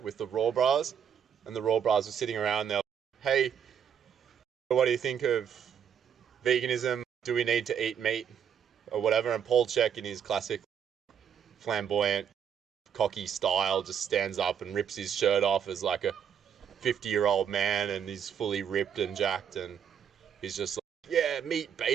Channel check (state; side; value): quieter; left; 8.1 dB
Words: with the Raw Bras, and the Raw Bras were sitting around there, hey, what do you think of veganism? Do we need to eat meat or whatever? And Paul CHEK, in his classic flamboyant, cocky style, just stands up and rips his shirt off as like a 50-year-old man, and he's fully ripped and jacked, and he's just like, yeah, meat,